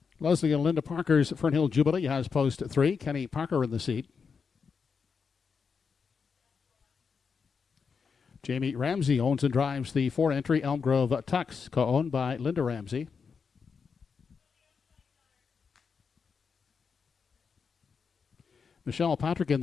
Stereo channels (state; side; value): quieter; right; 5.7 dB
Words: Leslie and Linda Parker's Fernhill Jubilee has post 3, Kenny Parker in the seat. Jamie Ramsey owns and drives the 4-entry Elm Grove Tux, co-owned by Linda Ramsey. Michelle Patrick in